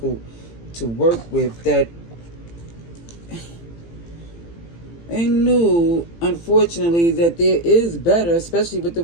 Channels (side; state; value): right; late; 18 ms